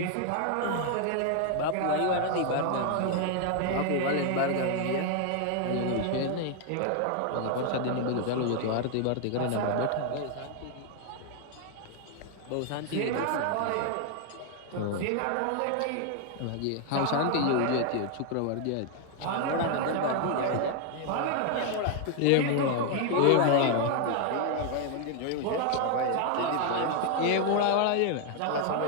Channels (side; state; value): both; different; correlation 0.00